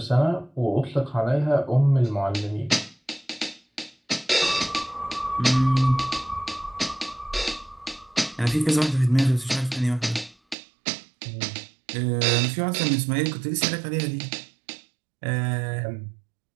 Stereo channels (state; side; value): drops out; left; at 10.6 s